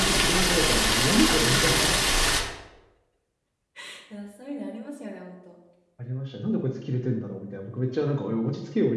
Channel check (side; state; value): both; identical; correlation 1.00